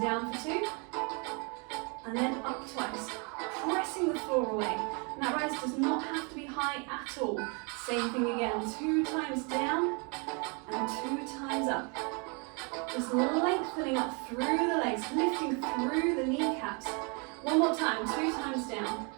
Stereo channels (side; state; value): left; quieter; 34.0 dB